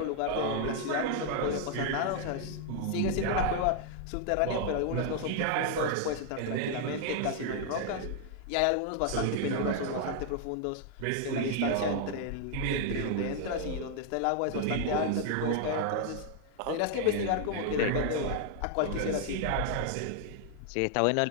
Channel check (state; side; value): different; both; correlation 0.00